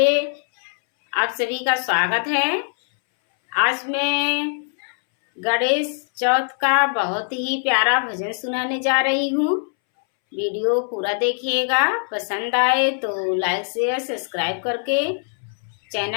आप सभी का स्वागत है। आज मैं गणेश चौथ का बहुत ही प्यारा भजन सुनाने जा रही हूँ। वीडियो पूरा देखिएगा। पसंद आए तो लाइक शेयर सब्सक्राइब करके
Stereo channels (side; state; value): right; silent; 63 dB below the other